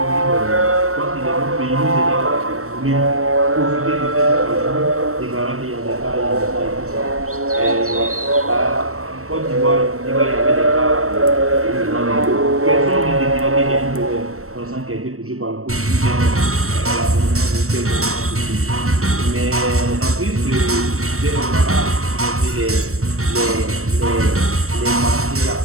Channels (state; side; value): late; left; 0.63 ms